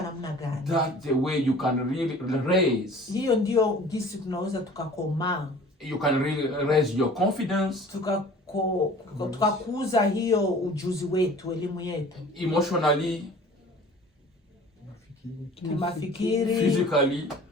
namna gani. That's the way you can really raise. Hiyo ndio jinsi tunaweza tukakomaa. You can really raise your confidence. Tukakuza hiyo ujuzi wetu, elimu yetu. Emotionally. Kimafikiri. Physically.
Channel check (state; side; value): normal; both; correlation 0.46